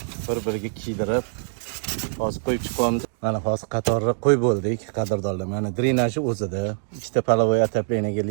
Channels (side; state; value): left; silent; 63 dB below the other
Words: bir-biriga kiydirib, hozir qo'yib chiqamiz. Mana hozir qatorga qo'yib bo'ldik, qadrdonlar. Mana drenaji o'zida, ikkita polovoy отоплениyaga